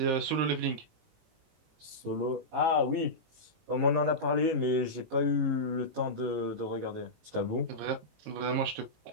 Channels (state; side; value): late; left; 19 ms